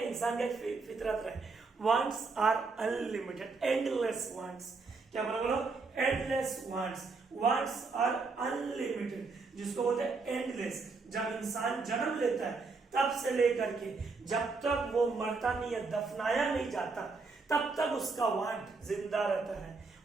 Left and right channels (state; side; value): quieter; left; 4.2 dB